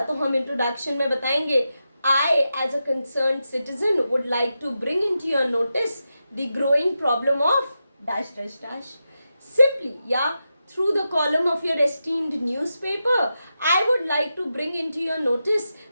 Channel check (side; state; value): both; inverted; correlation -0.89